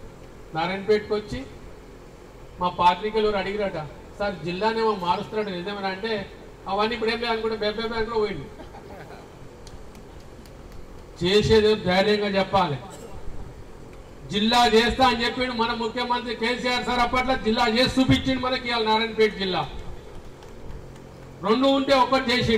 నారాయణపేటకు వచ్చి మా పాత్రికలు అడిగిరట, సార్ జిల్లానేమో మారుస్తున్నాడు నిజమేనా అంటే, అవన్నీ ఇప్పుడు ఏం అనుకుంటే బెబ్బే బ్యాంకులో పోయింది. చేసేది ధైర్యంగా చెప్పాలి. జిల్లా చేస్తా అని చెప్పిండు మన ముఖ్యమంత్రి కేసీఆర్ సార్. అప్పట్లో జిల్లా చేసి చూపించిండు మనకి. ఇవాళ నారాయణపేట జిల్లా 2 ఉంటే 1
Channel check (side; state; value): both; identical; correlation 1.00